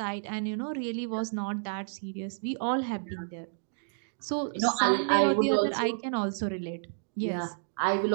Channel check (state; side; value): silent; left; digital silence